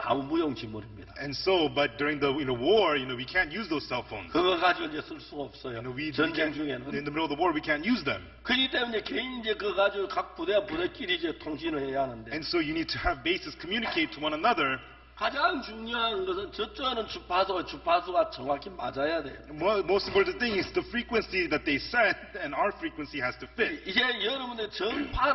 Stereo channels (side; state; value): both; identical; correlation 1.00